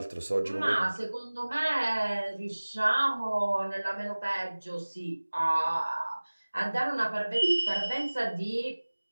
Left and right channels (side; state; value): both; inverted; correlation -1.00